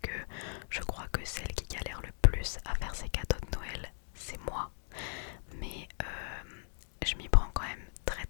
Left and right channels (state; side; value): silent; right; digital silence